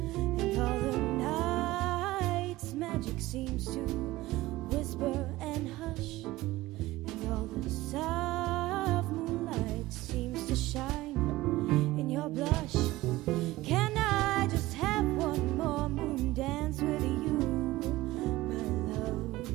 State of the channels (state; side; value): quieter; left; 17.9 dB